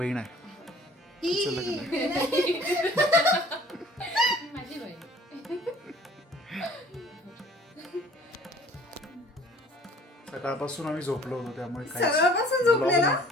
आहे. हिचं लग्न आहे. माझी बहीण. सकाळपासून आम्ही झोपलो होतो त्यामुळे सकाळपासून झोपलेला?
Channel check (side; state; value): both; normal; correlation 0.51